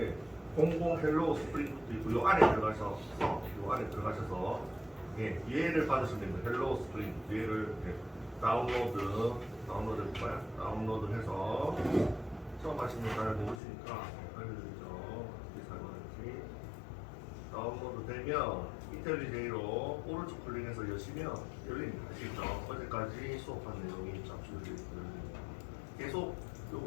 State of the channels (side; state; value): right; drops out; at 13.6 s